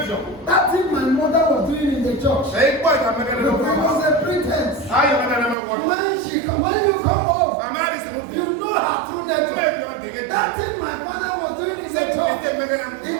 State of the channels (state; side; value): drops out; left; at 5.6 s